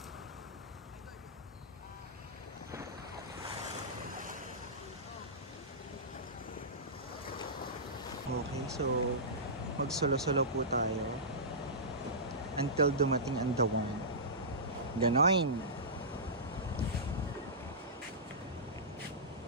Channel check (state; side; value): normal; both; correlation -0.17